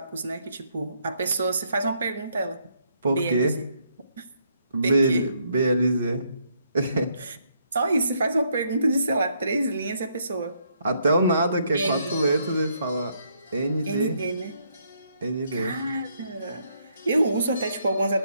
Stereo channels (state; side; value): inverted; both; correlation -0.73